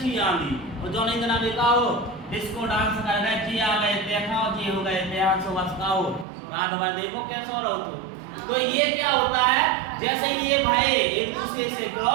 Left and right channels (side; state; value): left; drops out; at 6.2 s